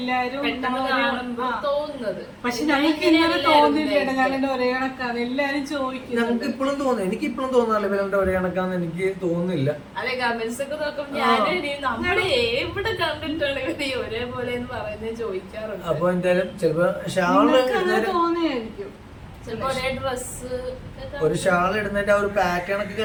തോന്നുന്നത്. പക്ഷെ ഞങ്ങൾക്ക് ഇങ്ങനെ തോന്നില്ല, ഞങ്ങളുടെ ഒരേ കണക്കാണ് എല്ലാരും ചോദിക്കുന്നത്. ഞങ്ങൾക്ക് ഇപ്പോഴും തോന്നുന്നു, എനിക്ക് ഇപ്പോഴും തോന്നാറില്ല ഇവരുടെ ഒരേ കണക്കാന്ന് എനിക്ക് തോന്നുന്നില്ല. അല്ലെ, കമന്റ്സ് ഒക്കെ നോക്കുമ്പോൾ നമ്മള് എവിടെ കണ്ടിട്ടാണ് ഇവര് ഒരേപോലെ എന്ന് പറയുന്നത് ചോദിക്കാറുണ്ട്. അപ്പൊ എന്തായാലും ചിലപ്പോ ഷാള് തോന്നിയായിരിക്കും, ഒരു ഷാൾ ഇടുന്നതിന്റെ ആ ഒരു പാറ്റേൺ ഒക്കെ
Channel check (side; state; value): both; identical; correlation 1.00